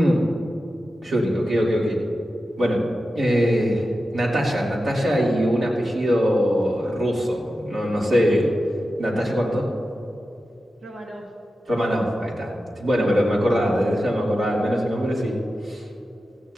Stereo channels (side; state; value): both; normal; correlation 0.92